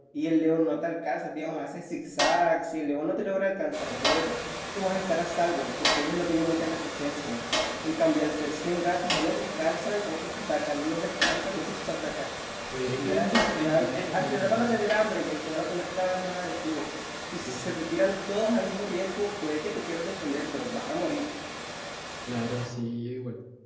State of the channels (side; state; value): both; identical; correlation 1.00